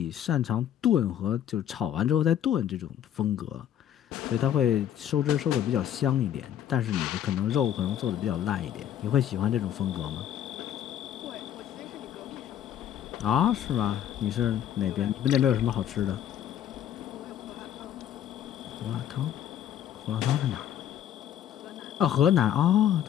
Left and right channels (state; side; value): quieter; right; 10.5 dB